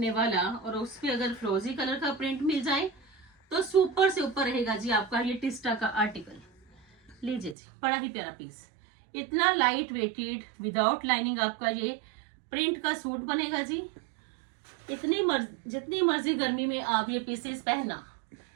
वाला, और उस पे अगर फ्रोजी कलर का प्रिंट मिल जाए तो सुपर से ऊपर रहेगा जी आपका ये टिस्टा का आर्टिकल। लीजिए जी, बड़ा ही प्यारा पीस, इतना लाइट वेटेड विदाउट लाइनिंग आपका ये प्रिंट का सूट बनेगा जी। जितनी मर्जी गर्मी में आप ये पीसेस पहनना,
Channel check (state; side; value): drops out; left; at 7.6 s